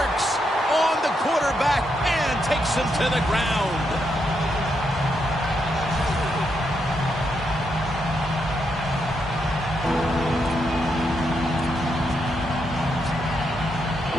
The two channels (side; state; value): both; normal; correlation 0.80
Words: on the quarterback and takes him to the ground.